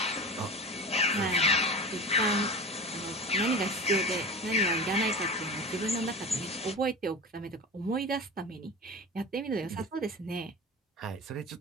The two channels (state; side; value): normal; both; correlation 0.31